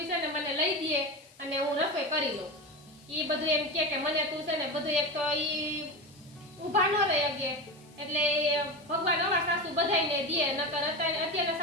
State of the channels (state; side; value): noise; left; hiss, 27 dB below the sound